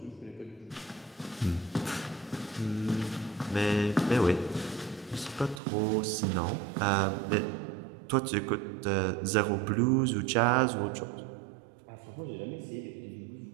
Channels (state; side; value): drops out; left; at 5.6 s